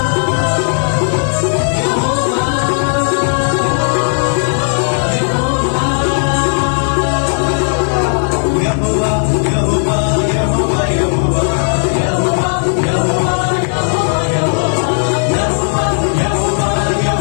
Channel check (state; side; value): silent; right; 59 dB below the other